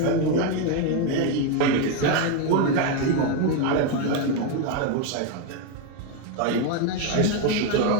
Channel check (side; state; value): both; different; correlation 0.02